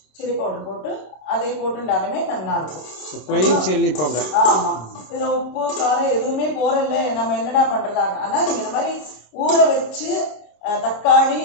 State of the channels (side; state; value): right; late; 26 ms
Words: சில்லி பவுடர் போட்டு அதை போட்டுட்டாலுமே நல்லா இருக்கும். Plain chilli powder. ஆமாம், இதில் உப்பு காரம் எதுவுமே போறல. நம்ம என்னடா பண்ணுறதா? ஆனால் நீங்கள் இந்த மாதிரி ஊற வச்சு தக்காளி